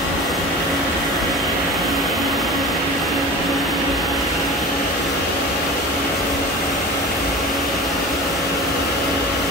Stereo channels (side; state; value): both; normal; correlation 0.35